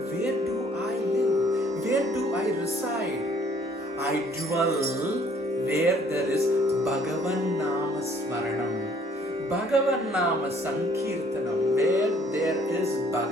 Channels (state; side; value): normal; both; correlation 0.59